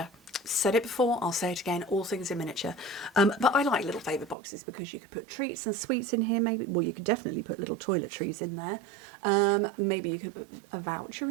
Said it before, I'll say it again, all things in miniature. But I like little Favour boxes because you could put treats and sweets in here, maybe. Well, you could definitely put little toiletries in there. Maybe you could put a voucher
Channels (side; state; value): left; drops out; at 4.4 s